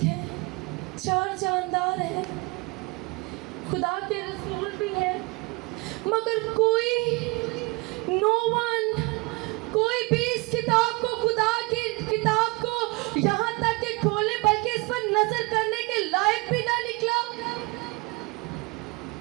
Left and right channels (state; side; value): quieter; left; 26.5 dB